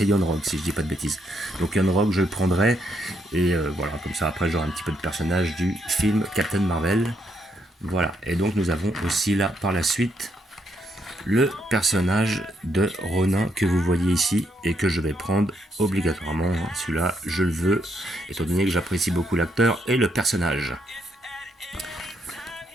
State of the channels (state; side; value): normal; both; correlation 0.76